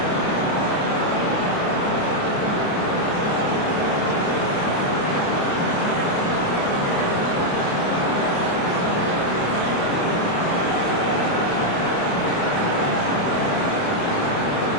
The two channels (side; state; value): right; late; 28 ms